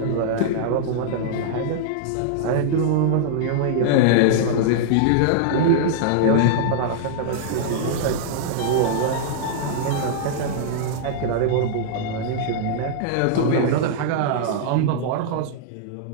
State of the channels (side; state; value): both; different; correlation -0.01